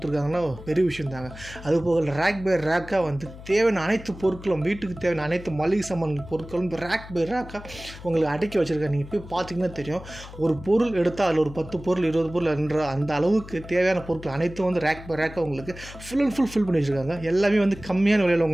பெரிய விஷயம் தாங்க. அதுபோக ரேக் பை ரேக்காக தேவையான அனைத்து பொருட்களும் வீட்டுக்கு தேவையான அனைத்து மளிகை சாமான் பொருட்களும் ரேக் பை ரேக்காக உங்களுக்கு அடக்கி வச்சுருக்காங்க. நீங்கள் போய் பார்த்தீங்கன்னா தெரியும், ஒரு பொருள் எடுத்தால் அதில் ஒரு 10 பொருள் 20 பொருள் என்ற அந்த அளவுக்கு தேவையான பொருட்கள் அனைத்தும் ரேக் பை ரேக்காக உங்களுக்கு ஃபுல் அண்ட் ஃபுல் ஃபில் பண்ணி வச்சுருக்காங்க. எல்லாமே கம்மியான விலையில்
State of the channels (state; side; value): noise; left; hum, 15 dB below the sound